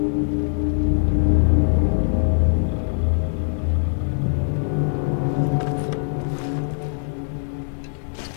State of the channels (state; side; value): silent; right; digital silence